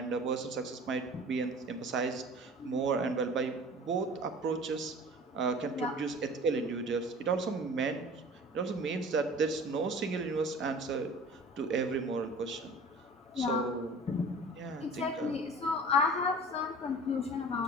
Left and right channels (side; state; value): both; normal; correlation 0.43